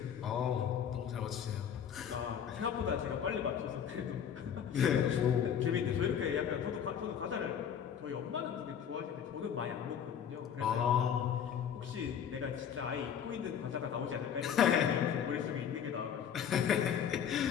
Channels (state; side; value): quieter; right; 8.4 dB